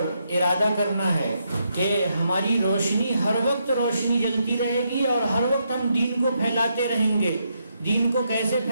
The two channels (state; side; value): inverted; both; correlation -0.79